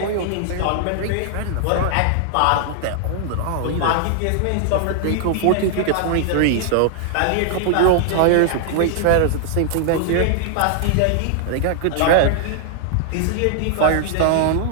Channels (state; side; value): different; both; correlation -0.01